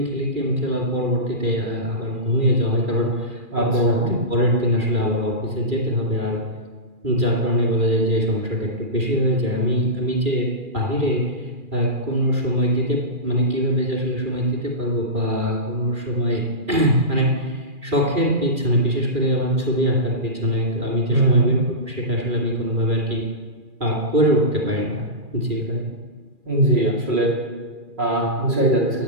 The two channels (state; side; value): late; left; 2.4 ms